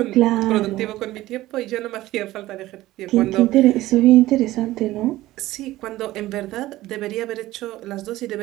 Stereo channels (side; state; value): left; quieter; 16.5 dB